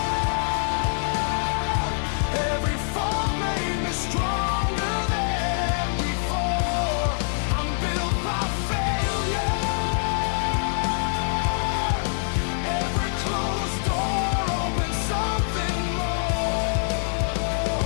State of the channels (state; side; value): silent; right; 62 dB below the other